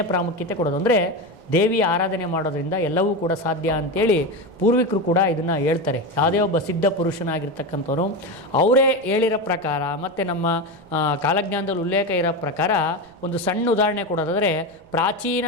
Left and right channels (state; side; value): noise; right; rumble, 27 dB below the sound